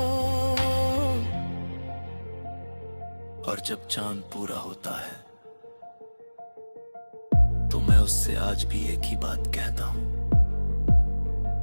और जब चांद पूरा होता है तो मैं उससे आज भी एक ही बात कहता हूं,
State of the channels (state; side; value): inverted; both; correlation -1.00